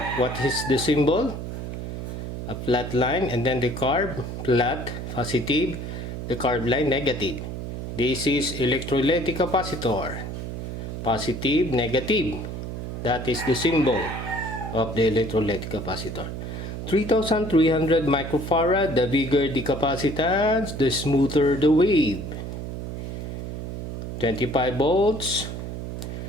What is the symbol? A flat line, and then the curve, flat, positive, the curved line, negative. This is electrolytic capacitor. Positive, negative. That is the symbol of the electrolytic capacitor. 3,300 microfarad, the bigger the capacitance, the smoother the wave. 25 volts,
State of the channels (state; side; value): noise; right; hum, 6 dB below the sound